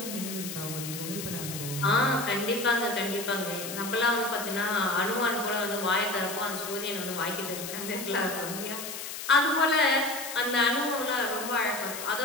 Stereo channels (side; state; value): left; noise; hiss, 8 dB below the sound